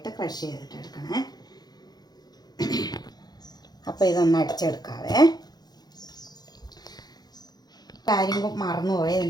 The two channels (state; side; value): late; right; 0.19 ms